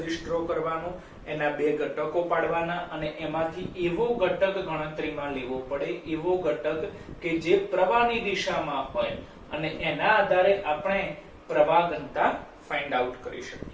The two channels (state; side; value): identical; both; correlation 1.00